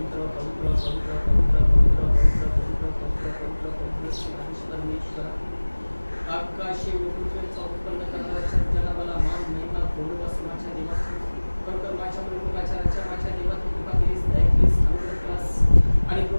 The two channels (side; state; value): both; inverted; correlation -1.00